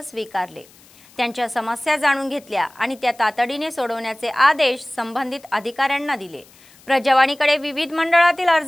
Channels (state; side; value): noise; left; hiss, 26 dB below the sound